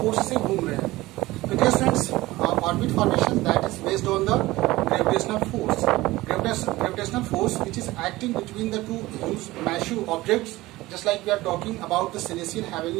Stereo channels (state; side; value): quieter; left; 18.6 dB